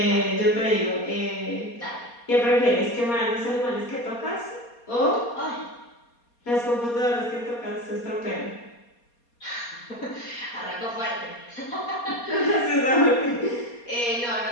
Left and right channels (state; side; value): late; right; 4.2 ms